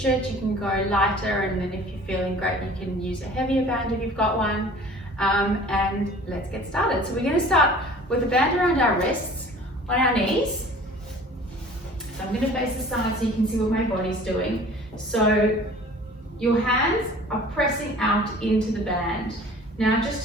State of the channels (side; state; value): both; normal; correlation 0.47